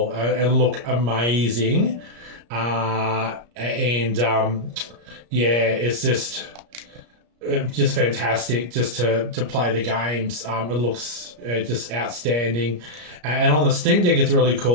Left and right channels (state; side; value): late; left; 34 ms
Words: and look amazing. And yeah, it's just fantastic just to play the games. It looks just outstanding, and on the Steam Deck it's really